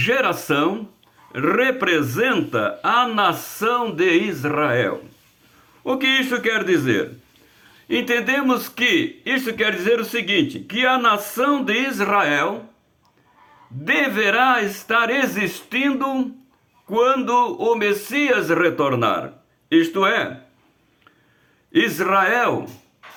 representa a nação de Israel. O que isso quer dizer? Entendemos que isso quer dizer o seguinte, que a nação de Israel deverá estar existindo quando o Messias retornar. Isto é, Israel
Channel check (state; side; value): identical; both; correlation 1.00